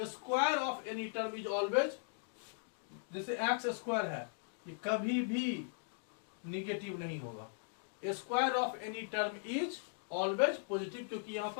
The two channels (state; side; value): silent; right; digital silence